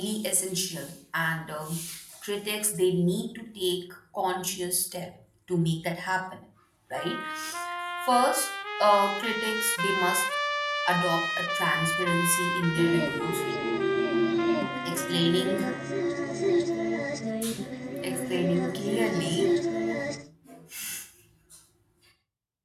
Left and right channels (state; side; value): identical; both; correlation 1.00